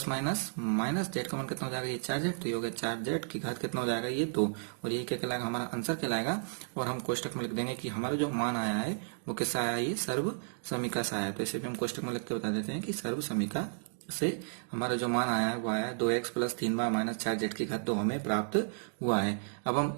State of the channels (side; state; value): left; silent; digital silence